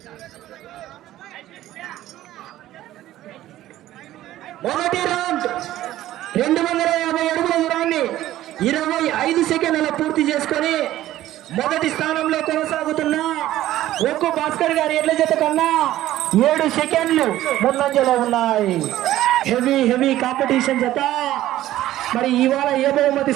మొదటి రౌండ్ 250 అడుగుల దూరాన్ని 25 సెకండ్ల పూర్తి చేసుకొని మొదటి స్థానంలో కొనసాగుతున్న ఒక్కు భాస్కర్ గారి ఎడ్ల జత కన్నా 7 సెకండ్లు ముందంజలో ఉన్నాయి. హెవీ కాంపిటీషన్ జత. మరి ఇవాళ ఏ బహుమతి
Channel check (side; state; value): left; quieter; 14.2 dB